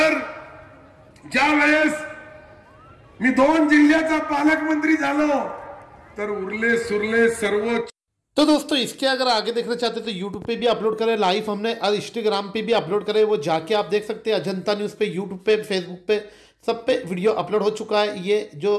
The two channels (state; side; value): identical; both; correlation 1.00